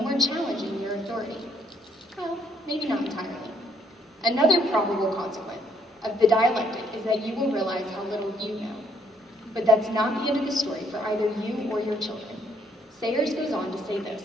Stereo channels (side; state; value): both; normal; correlation 0.68